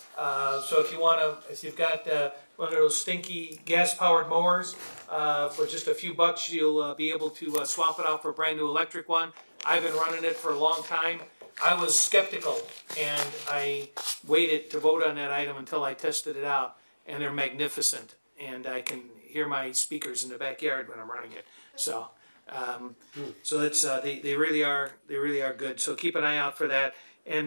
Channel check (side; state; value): both; inverted; correlation -1.00